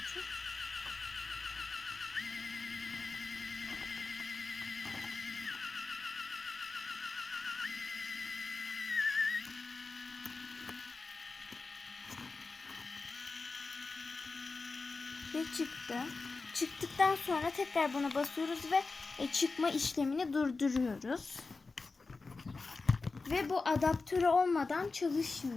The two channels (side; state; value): right; quieter; 3.9 dB